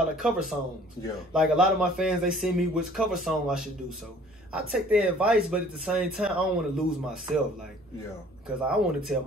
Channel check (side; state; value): both; normal; correlation 0.54